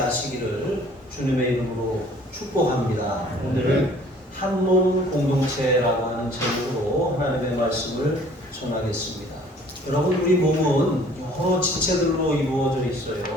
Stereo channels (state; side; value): normal; both; correlation 0.54